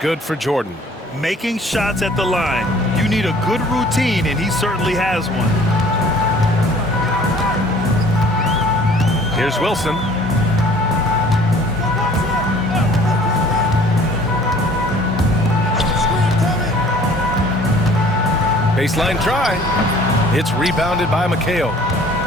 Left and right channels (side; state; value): both; normal; correlation 0.53